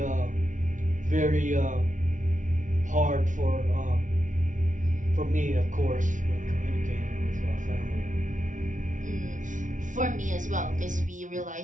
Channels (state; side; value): late; left; 0.37 ms